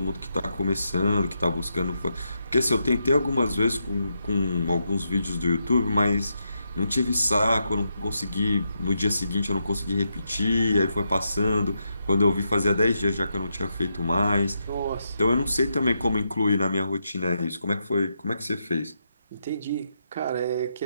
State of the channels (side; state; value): both; inverted; correlation -0.83